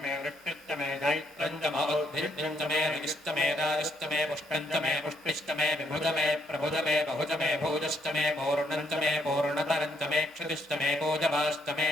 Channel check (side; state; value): both; normal; correlation 0.73